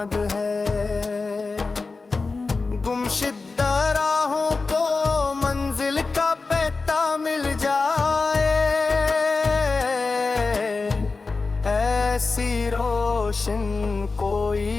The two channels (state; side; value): quieter; right; 4.0 dB